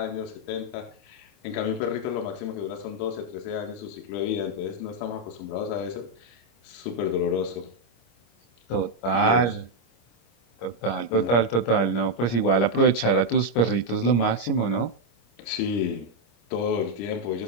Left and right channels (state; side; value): late; right; 25 ms